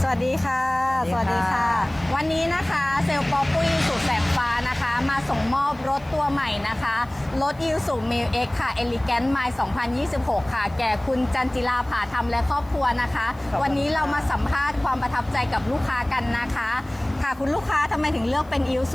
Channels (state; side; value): noise; left; hiss, 29 dB below the sound